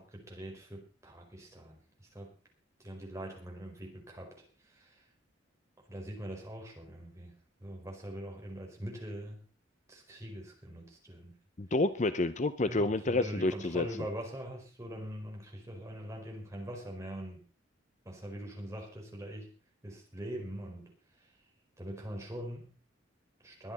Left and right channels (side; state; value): both; normal; correlation 0.50